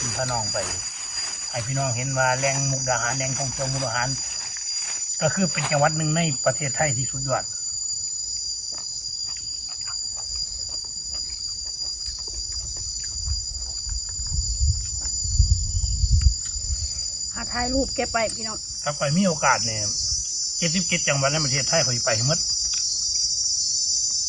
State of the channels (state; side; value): identical; both; correlation 1.00